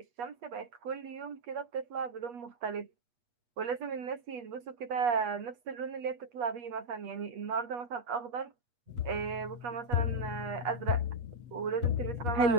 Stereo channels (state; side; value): late; left; 8.3 ms